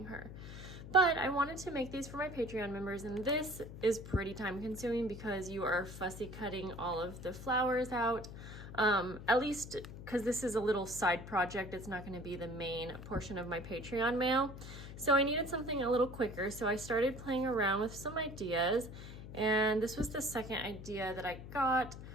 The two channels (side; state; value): left; noise; hum, 12 dB below the sound